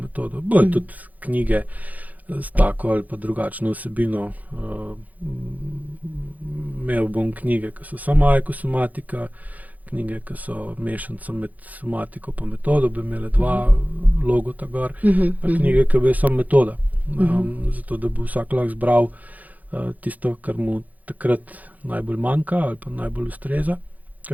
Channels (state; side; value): late; left; 0.079 ms